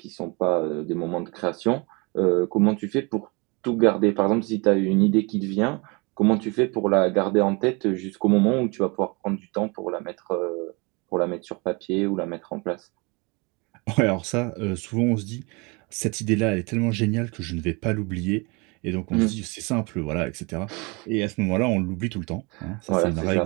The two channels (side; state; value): left; quieter; 28.7 dB